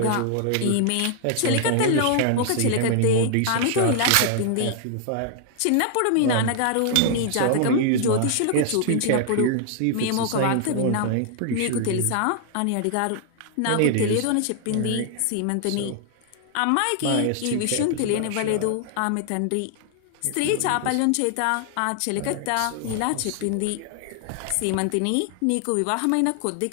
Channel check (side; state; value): both; different; correlation 0.00